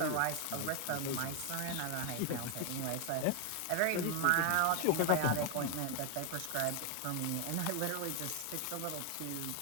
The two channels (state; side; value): different; both; correlation 0.00